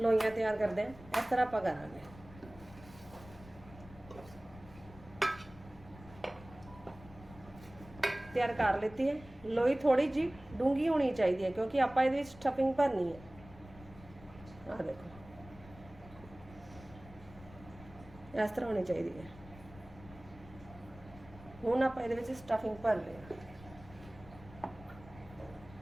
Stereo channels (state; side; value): noise; left; rumble, 19 dB below the sound